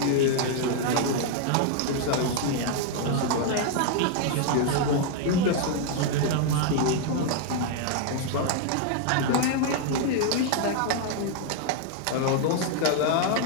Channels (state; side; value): different; both; correlation 0.00